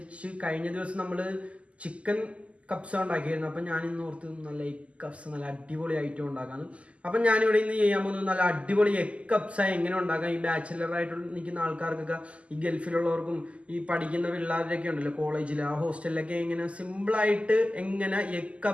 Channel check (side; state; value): left; late; 0.061 ms